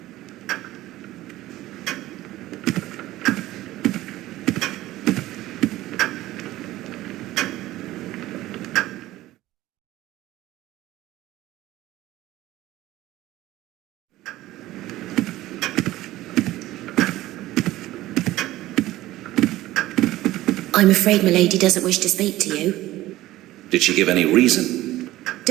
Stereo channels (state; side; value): quieter; left; 16.2 dB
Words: I'm afraid milady doesn't wish to speak to you. Did she give any reason?